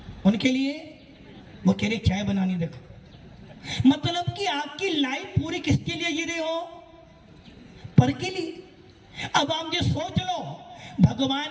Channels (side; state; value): both; identical; correlation 1.00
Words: वो कह रहे चाय बनानी। देखो मतलब कि आपकी लाइफ पूरी किसके लिए जी रहे हो? पर के लिए। अब आप ये सोच लो,